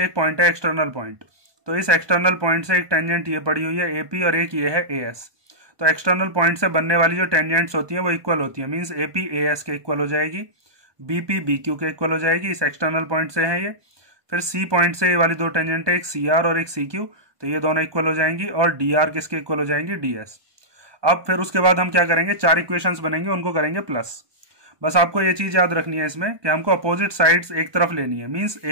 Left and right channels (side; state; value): left; late; 1.2 ms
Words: एक पॉइंट है एक्सटर्नल पॉइंट, तो इस एक्सटर्नल पॉइंट से एक टेंजेंट ये पड़ी हुई है AP और एक ये है AS। तो एक्सटर्नल पॉइंट से बनने वाली जो टेंजेंट्स होती हैं वो इक्वल होती है, मींस AP AS के इक्वल हो जाएगी, BP BQ के इक्वल हो जाएगी। इस एक्सटर्नल पॉइंट से है ये। फिर C पॉइंट से ये वाली दो टेंजेंट है, एक CR और एक CQ, तो ये दोनों इक्वल हो जाएंगी और DR किसके इक्वल हो जाएंगी, DS। अब फिर उसके बाद हम क्या करेंगे, 4 इक्वेशंस बनेंगे, उनको करेंगे प्लस। बस आपको ये चीज याद रखनी है इसमें कि हमको अपोजिट साइड्स एक तरफ लेनी है, मींस